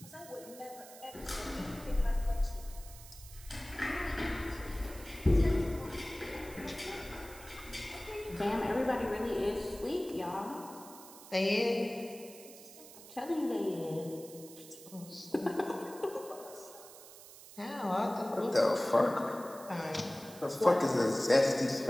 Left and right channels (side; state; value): right; noise; hiss, 17 dB below the sound